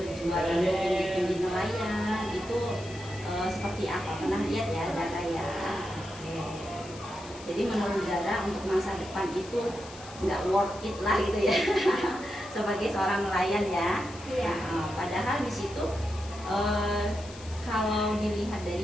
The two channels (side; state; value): left; noise; hiss, 18 dB below the sound